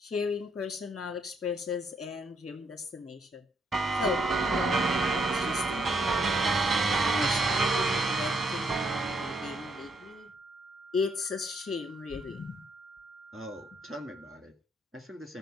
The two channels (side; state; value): both; normal; correlation 0.73